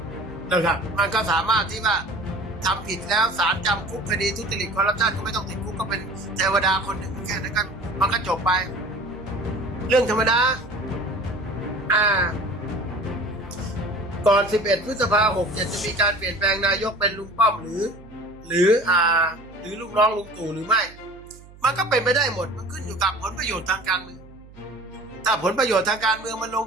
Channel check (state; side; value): noise; right; hum, 21 dB below the sound